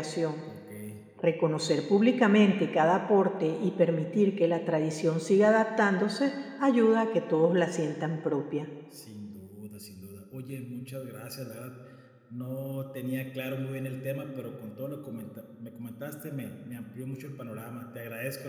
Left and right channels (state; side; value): identical; both; correlation 1.00